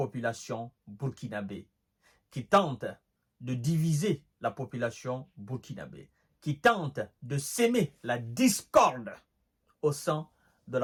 burkinabé, qui tentent de diviser la population burkinabé, qui tentent de s'aimer la discorde au sein de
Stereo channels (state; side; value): identical; both; correlation 1.00